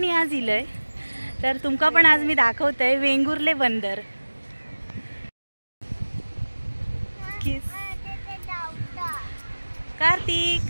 आज इलय. तर तुमका पण आज मी दाखवते वेंगुर्ले बंदर. कार्तिक,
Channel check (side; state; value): both; inverted; correlation -1.00